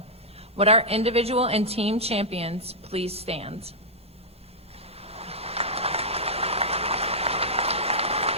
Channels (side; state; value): both; normal; correlation -0.10